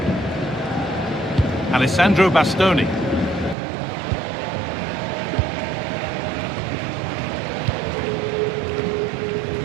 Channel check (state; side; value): drops out; left; at 3.6 s